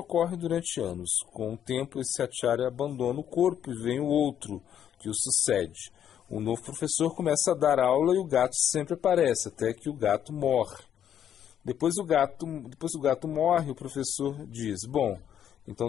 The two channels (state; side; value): quieter; right; 9.7 dB